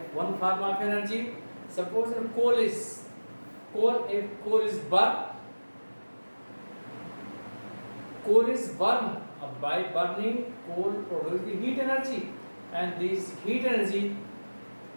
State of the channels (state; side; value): inverted; both; correlation -1.00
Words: one form of energy, suppose if coal is burned, by burning coal produces the heat energy, and this heat energy